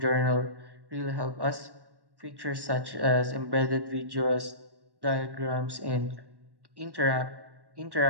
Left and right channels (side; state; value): left; late; 1.1 ms